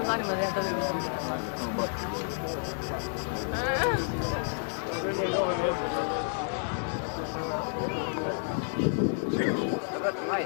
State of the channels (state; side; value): silent; right; 58 dB below the other